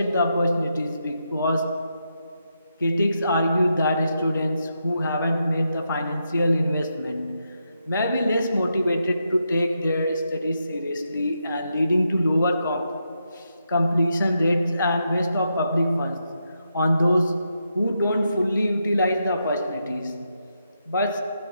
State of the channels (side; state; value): both; inverted; correlation -0.83